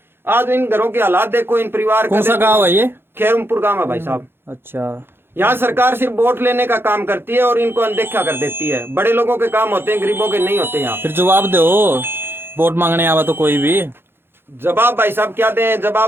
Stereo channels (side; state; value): left; late; 0.11 ms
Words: आज इन घरों के हालात देखो, इन परिवार। कौन सा गाँव है ये? खैरुमपुर गाँव है भाई साहब। अच्छा, यहाँ सरकार सिर्फ वोट लेने का काम करती है और इनको अनदेखा कर देती है। बड़े लोगों के काम होते हैं, गरीबों के नहीं होते। यहाँ फिर जवाब दो, वोट मांगने आवा तो कोई भी जवाब भाई साहब क्या दें